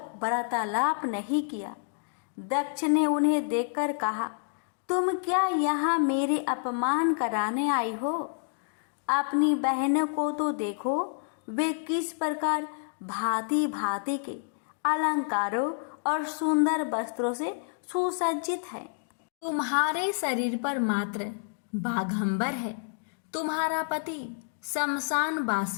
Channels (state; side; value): silent; right; digital silence